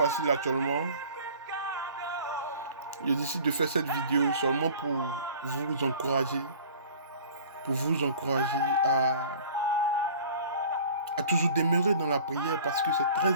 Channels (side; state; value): both; inverted; correlation -0.46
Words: actuellement. Je décide de faire cette vidéo seulement pour vous encourager, à toujours demeurer dans la prière parce que c'est